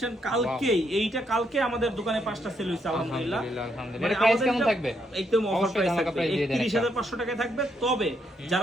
কালকে আমাদের দোকানে 5টা সেল হইছে, আলহামদুলিল্লাহ। এর প্রাইস কেমন থাকবে? একদম অফার প্রাইস থাকবে, 31500 টাকায় থাকবে। তবে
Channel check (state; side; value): normal; both; correlation 0.76